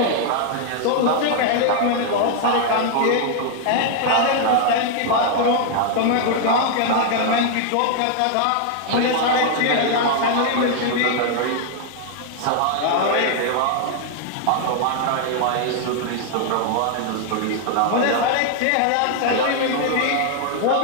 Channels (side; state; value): both; different; correlation 0.00